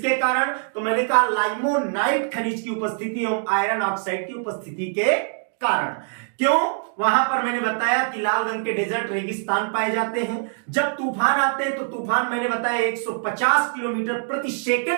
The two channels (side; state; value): left; silent; 63 dB below the other